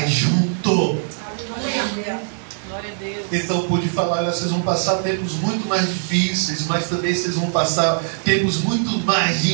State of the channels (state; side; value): silent; left; 65 dB below the other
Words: junto. Glória a Deus. Então pude falar: olha, vocês vão passar tempos muito mais difíceis, mas também vocês vão passar tempos muito mais